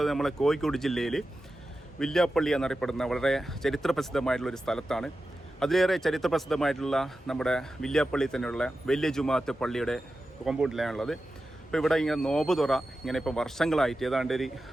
നമ്മളെ കോഴിക്കോട് ജില്ലയിൽ വില്യാപ്പള്ളി എന്നറിയപ്പെടുന്ന വളരെ ചരിത്രപ്രസിദ്ധമായിട്ടുള്ളൊരു സ്ഥലത്താണ്. അതിലേറെ ചരിത്രപ്രസിദ്ധമായിട്ടുള്ള നമ്മുടെ വില്യാപ്പള്ളി തന്നെയുള്ള വലിയ ജുമാഅത്ത് പള്ളിയുടെ കോമ്പൗണ്ടിലാണുള്ളത്. അപ്പോൾ ഇവിടെ ഇങ്ങനെ നോമ്പ് തുറ ഇങ്ങനെ ഇപ്പോൾ വർഷങ്ങളായിട്ട് ഏതാണ്ട് ഒരു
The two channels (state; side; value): normal; both; correlation 0.92